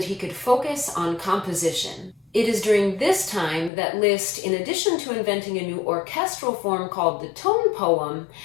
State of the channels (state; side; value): drops out; right; at 3.7 s